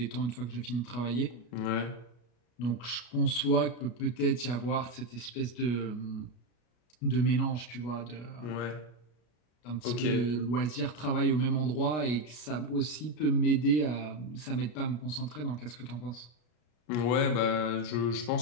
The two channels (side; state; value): right; late; 33 ms